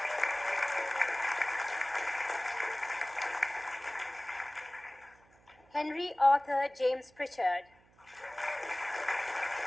Henry Arthur James Pritchard.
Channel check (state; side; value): noise; right; hum, 30 dB below the sound